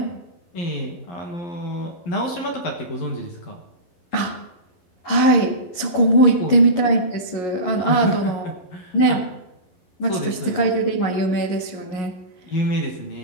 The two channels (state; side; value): late; right; 11 ms